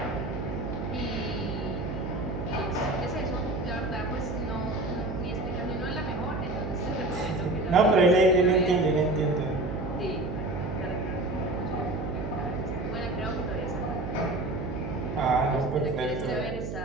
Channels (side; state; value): right; noise; hum, 5 dB below the sound